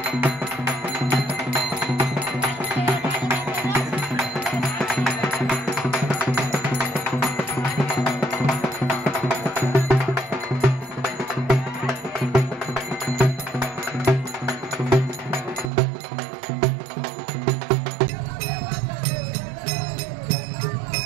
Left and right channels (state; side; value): drops out; left; at 15.7 s